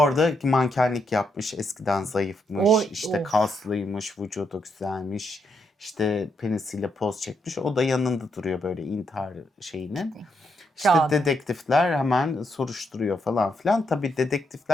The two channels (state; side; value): normal; both; correlation 0.79